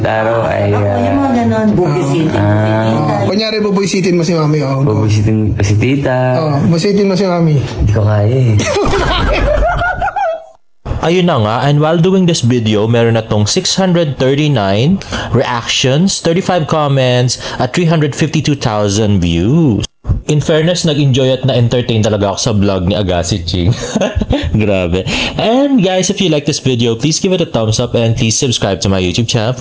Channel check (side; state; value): both; identical; correlation 1.00